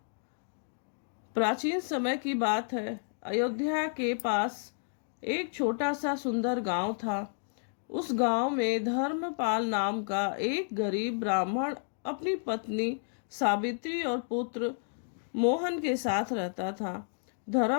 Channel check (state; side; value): silent; right; digital silence